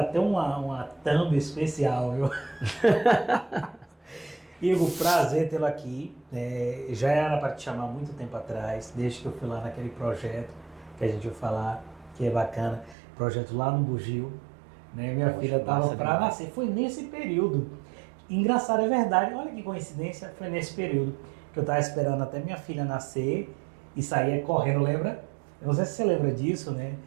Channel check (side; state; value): left; drops out; at 13.0 s